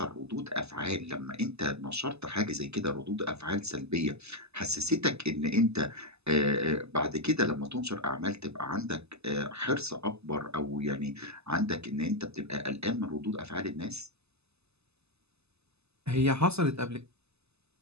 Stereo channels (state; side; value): late; left; 0.79 ms